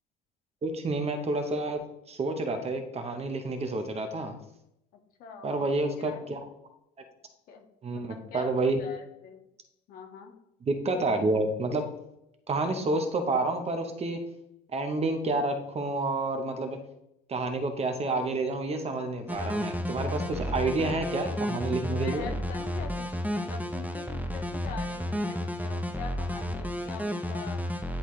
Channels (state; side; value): normal; both; correlation 0.56